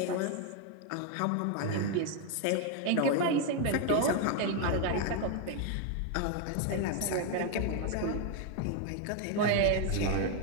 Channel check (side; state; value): both; different; correlation 0.01